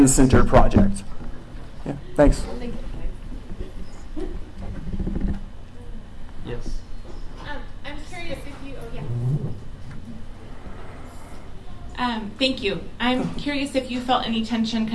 project. Yeah. Thanks. Thank you. Yes. I'm curious if you. Oh yeah. Thank you. I'm curious if you felt any tension,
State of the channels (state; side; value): identical; both; correlation 1.00